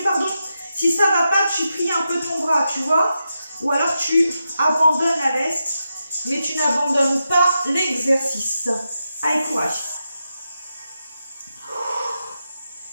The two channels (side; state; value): both; inverted; correlation -0.88